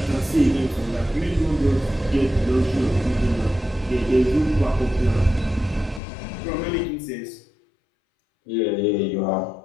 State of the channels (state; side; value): drops out; right; at 6.0 s